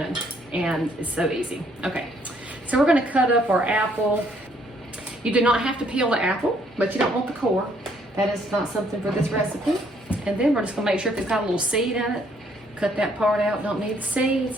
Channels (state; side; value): normal; both; correlation 0.67